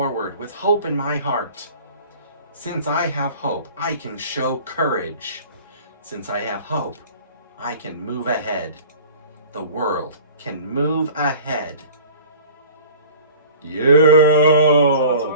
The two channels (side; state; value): both; inverted; correlation -0.44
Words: with hope in my heart. Since I have hope, I can show courage. Since I have hope, I can move ahead. The world can move ahead. What's the Yeah!